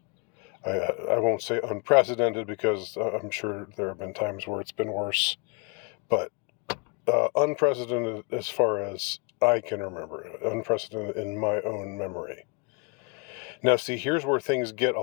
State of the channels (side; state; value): right; quieter; 32.3 dB